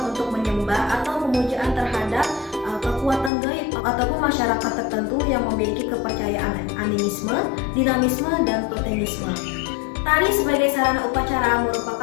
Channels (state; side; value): drops out; right; at 3.3 s